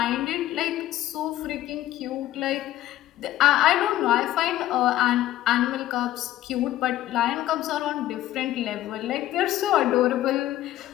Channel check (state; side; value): quieter; right; 13.9 dB